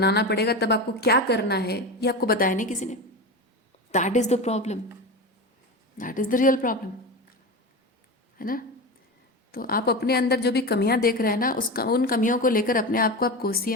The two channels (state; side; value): normal; both; correlation 0.23